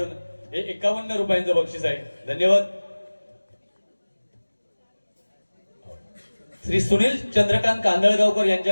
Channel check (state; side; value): inverted; both; correlation -1.00